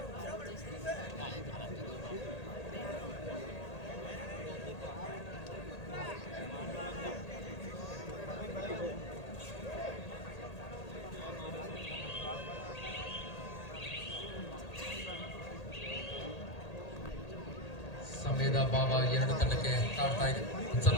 ಸಮಯದ ಭಾವ 2 ತಂಡಕ್ಕೆ ಕಾಡ್ತಾ ಇದೆ.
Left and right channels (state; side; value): late; right; 1.8 ms